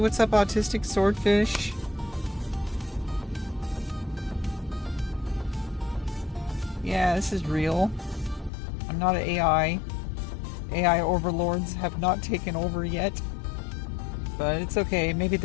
up, autistic swordfish? Yeah, this is real. I'm not an AI. AI overlords have not taken over yet. But it's okay. Maybe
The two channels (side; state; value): right; drops out; at 8.5 s